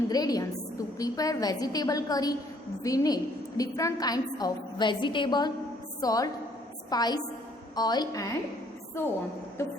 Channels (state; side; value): normal; both; correlation 0.63